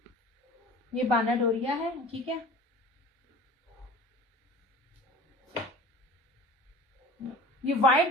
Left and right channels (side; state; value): both; normal; correlation 0.41